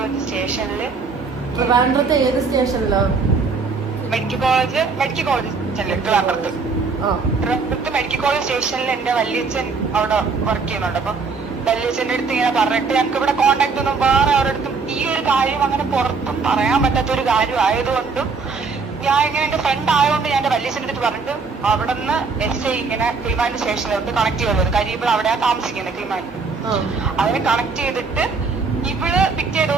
സ്റ്റേഷനില്. ട്രിവാൻഡ്രത്ത് ഏത് സ്റ്റേഷനിലോ? മെഡിക്കൽ കോളേജ് ട്രിവാൻഡ്രത്ത്. ട്രിവാൻഡ്രത്ത് മെഡിക്കൽ കോളേജ് സ്റ്റേഷനിൽ എന്റെ വല്യച്ഛൻ അവിടെ വർക്ക് ചെയ്യുന്നുണ്ട്. അപ്പൊ വല്യച്ഛൻ്റെ അടുത്ത് ഇങ്ങനെ പറഞ്ഞിട്ട് ഞങ്ങൾക്ക് ഇവിടെ കോണ്ടാക്ട് ഒന്നും വേറെ അവരുടെ അടുത്തും ഈ ഒരു കാര്യം അങ്ങനെ പുറത്തും പറയാൻ പറ്റാത്ത ഒരു കാര്യം ആയതുകൊണ്ടും ഞാൻ ഇങ്ങനെ എന്റെ ഫ്രണ്ട് ആയതുകൊണ്ട് ഞാൻ എന്റെ വല്യച്ഛൻ്റെ അടുത്ത് പറഞ്ഞിട്ട് അവിടെ നിന്ന് SI ഇങ്ങനെ കിളിമാനൂർ സ്റ്റേഷനിലോട്ട് കണക്ട് ചെയ്തത്. കാര്യം ഇവിടെ അവിടെയാ താമസിക്കുന്നത് കിളിമാനൂർ. അതിനെ കണക്ട് ചെയ്തിട്ട് ഇവള് പിറ്റേ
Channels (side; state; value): left; quieter; 4.7 dB